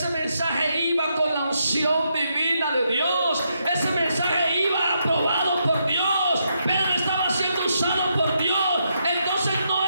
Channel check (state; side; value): inverted; both; correlation -0.79